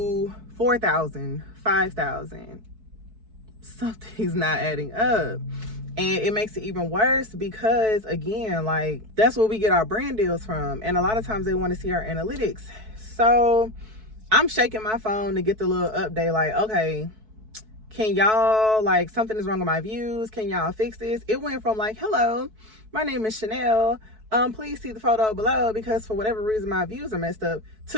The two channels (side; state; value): left; late; 4.6 ms